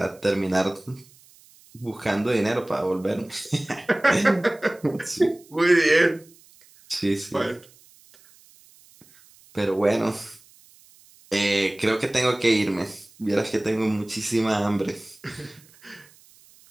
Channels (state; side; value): noise; right; hiss, 27 dB below the sound